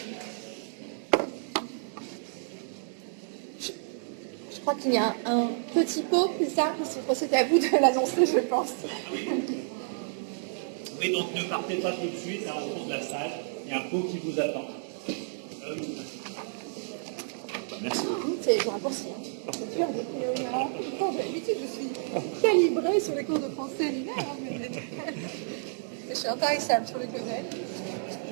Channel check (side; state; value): left; silent; digital silence